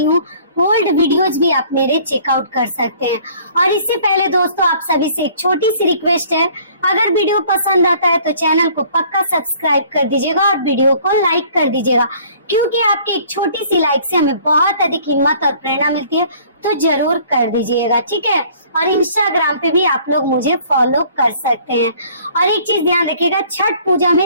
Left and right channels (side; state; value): both; inverted; correlation -0.55